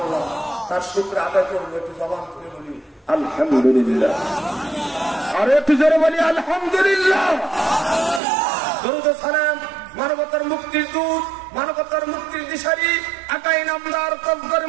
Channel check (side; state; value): left; drops out; at 8.2 s